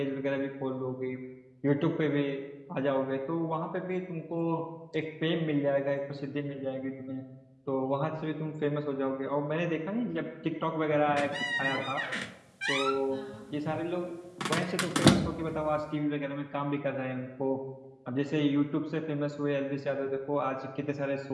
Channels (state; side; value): identical; both; correlation 1.00